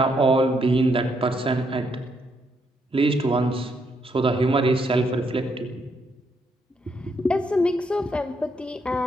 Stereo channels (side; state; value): both; normal; correlation 0.75